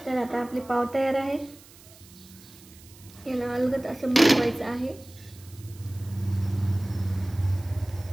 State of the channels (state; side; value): noise; right; hiss, 22 dB below the sound